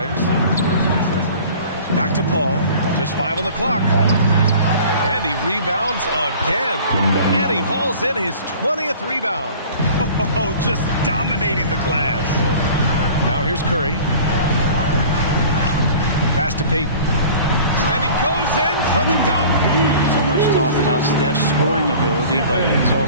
Back to Paul. Just 5 on the clock. And he rebounds again. And he hauls in his 20th rebound. Oh, just dominating the glass. Now here's Curry. Pass to Payton. And he goes in for the dunk. So much talk about Steph's scoring ability, but he's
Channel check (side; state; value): both; inverted; correlation -0.44